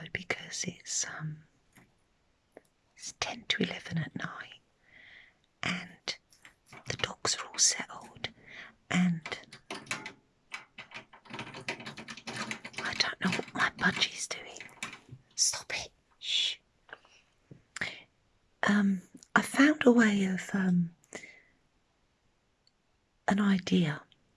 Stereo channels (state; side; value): identical; both; correlation 1.00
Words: because it's 10 to 11 at night, and the dogs are all settled, and I don't know what my budgie's doing. Stop it. Shh. I found a way of an idea